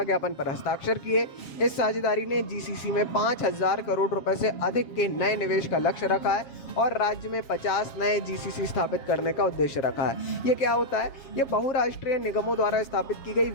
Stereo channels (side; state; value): right; late; 7.4 ms